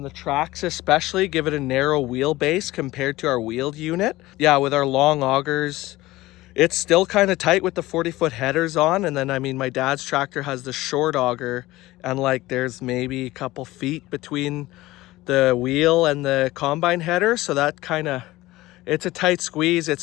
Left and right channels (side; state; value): right; quieter; 18.2 dB